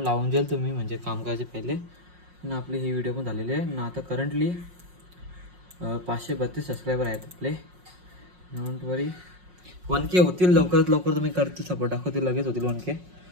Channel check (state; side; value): late; left; 5.5 ms